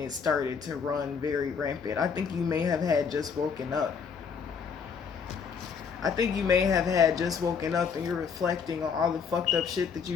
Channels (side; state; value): right; quieter; 6.2 dB